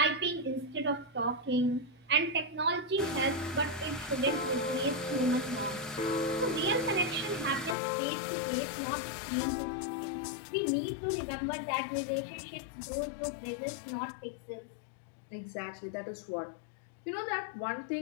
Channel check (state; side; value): drops out; right; at 7.8 s